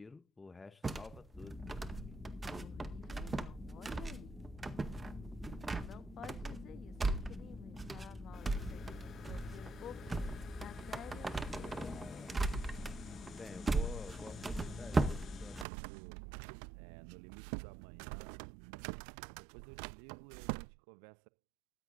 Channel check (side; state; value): left; drops out; at 15.7 s